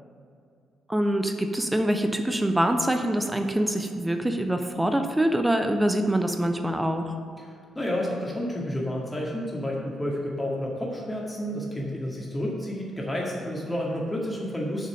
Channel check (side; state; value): both; normal; correlation 0.90